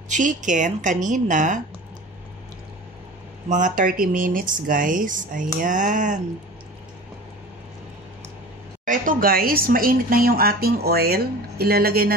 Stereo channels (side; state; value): both; normal; correlation 0.37